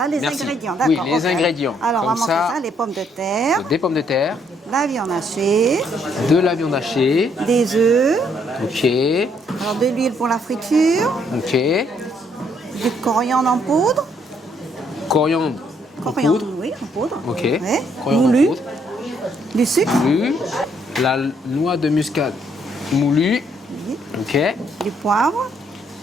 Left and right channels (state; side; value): normal; both; correlation 0.70